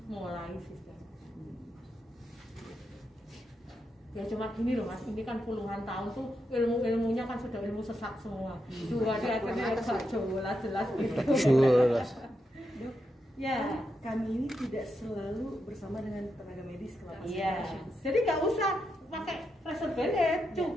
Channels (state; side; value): normal; both; correlation 0.84